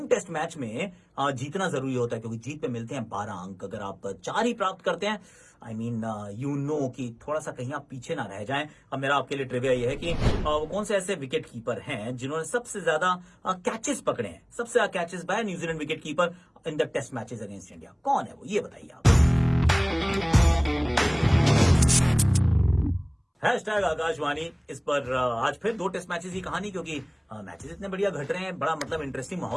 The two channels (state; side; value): identical; both; correlation 1.00